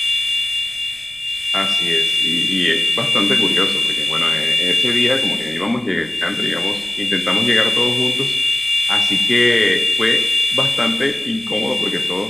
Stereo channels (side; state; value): right; noise; rumble, 27 dB below the sound